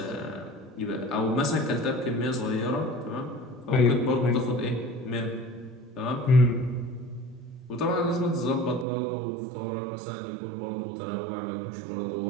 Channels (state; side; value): drops out; left; at 8.8 s